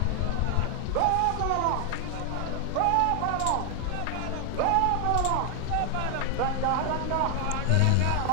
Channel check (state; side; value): different; both; correlation 0.00